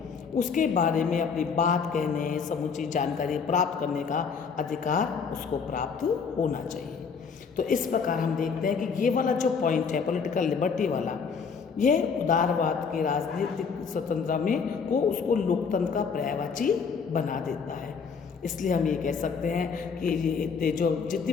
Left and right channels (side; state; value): right; quieter; 5.8 dB